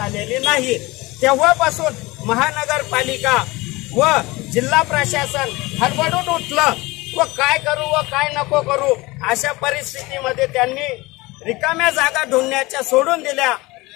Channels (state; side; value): quieter; right; 22.0 dB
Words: नाही। तेव्हापासून महानगरपालिका व जिल्हा प्रशासन हडबडून उठलं व काय करू व काय नको करू अशा परिस्थितीमध्ये त्यांनी रिकाम्या जागा ढूंढण्याच्या सोडून दिल्या।